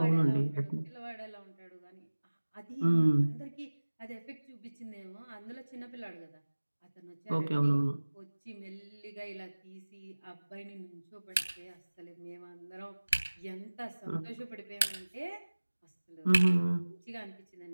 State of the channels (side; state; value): both; inverted; correlation -1.00